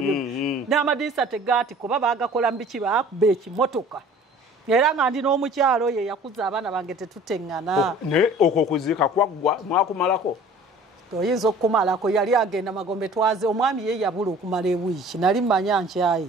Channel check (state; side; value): normal; both; correlation 0.48